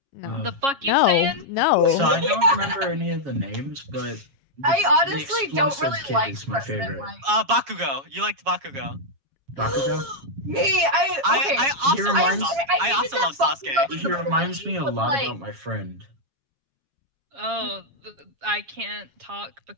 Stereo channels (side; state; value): left; late; 7.3 ms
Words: No. The fuck you No. saying? No. So I don't remember any of the names, but I the honestly don't explosive really kid like is my President favorite. Mike. Bakugo. You liked Bakugo. Bakugo. Me, okay. I also He love reminds- Sasuke. I hated also that love Sasuke. Bakugo was He the reminds me a boy, lot like- about my friend. Oh, I can't talk